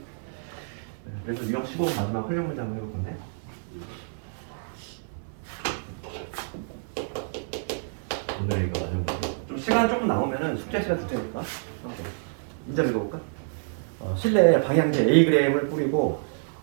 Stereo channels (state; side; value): silent; left; digital silence